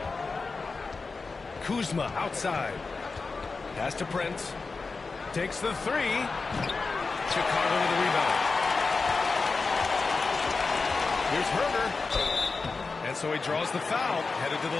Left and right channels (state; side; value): quieter; right; 4.2 dB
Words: Kuzma outside. Pass to Prince. Takes the 3. Chicago with the rebound. Here's Herder. And so he draws the foul. Headed to